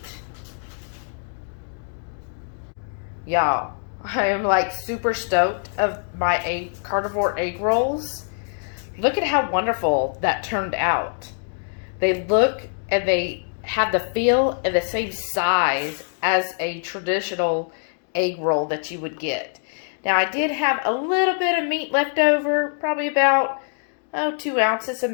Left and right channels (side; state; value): right; silent; 63 dB below the other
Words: Y'all, I am like super stoked of my carnivore egg rolls. Look at how wonderful that turned out. They look and they have the feel and the same size as a traditional egg roll that you would get. Now I did have a little bit of meat left over, probably about 2 ounces of